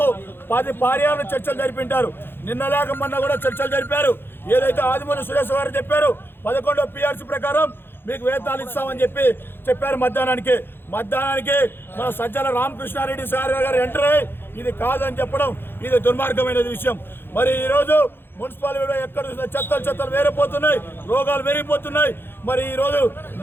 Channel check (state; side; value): late; right; 0.10 ms